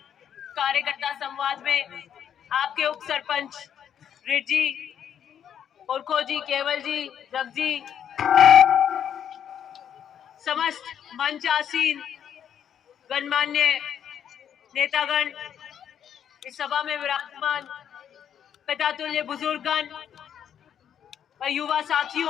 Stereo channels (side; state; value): right; quieter; 9.0 dB